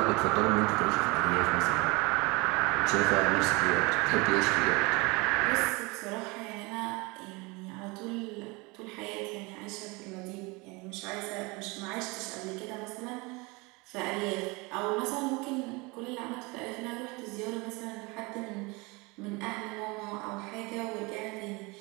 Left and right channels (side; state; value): left; quieter; 26.1 dB